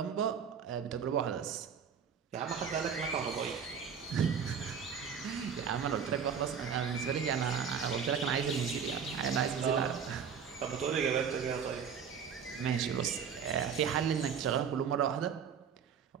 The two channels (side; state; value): left; quieter; 7.1 dB